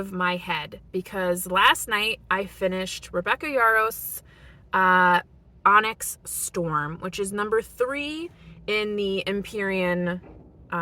my head, because last night I finished Rebecca Yarros' Onyx Storm, which is number 3 in the Empyrean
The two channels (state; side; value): identical; both; correlation 1.00